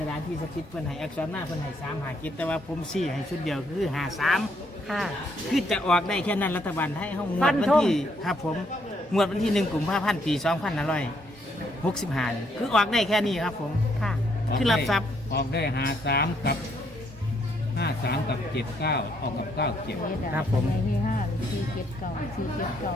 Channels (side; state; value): both; normal; correlation 0.72